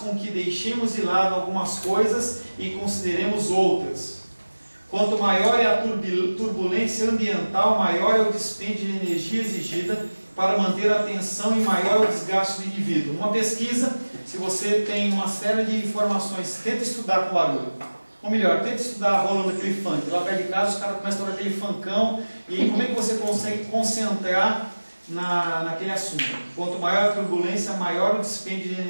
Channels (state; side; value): inverted; both; correlation -1.00